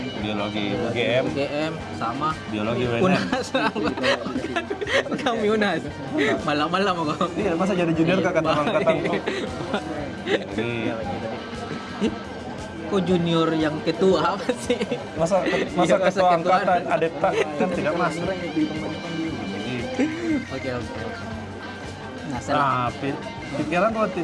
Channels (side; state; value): both; identical; correlation 1.00